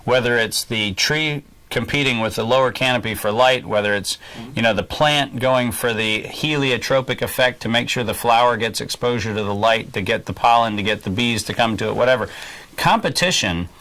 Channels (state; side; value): identical; both; correlation 1.00